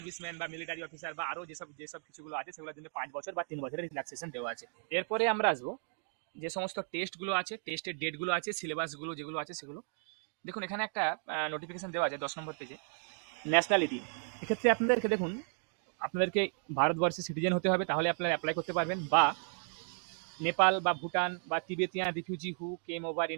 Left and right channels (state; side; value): silent; left; 55 dB below the other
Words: বা মিলিটারি অফিসার বা আরও যেসব যেসব কিছুগুলো আছে সেগুলোর জন্য 5 বছর বা 3 বছরের রিল্যাক্সেশন দেওয়া আছে। এরপরে আমরা আসবো যে সমস্ত টেস্টগুলো আছে, টেস্টের ডেটগুলো আছে, সিলেবাসগুলো যেগুলো আছে সেগুলো দেখুন। এখানে একটা নোটিফিকেশন দেওয়া আছে 10 নম্বর পেজে, ন্যাশনালিটি। এক্ষেত্রে আপনাদেরকে দেখুন আপনাদেরকে ভারতবর্ষের সিটিজেন হতে হবে, তাহলে আপনারা অ্যাপ্লাই করতে পারবেন, বা নেপাল বা ভুটান বা তিবেতিয়ান রিফিউজি হু কেম ওভার